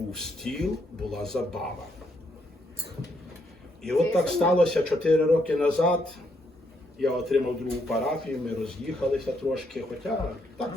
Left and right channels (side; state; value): both; normal; correlation 0.75